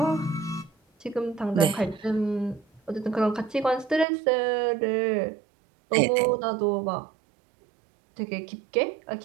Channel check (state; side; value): drops out; left; at 4.0 s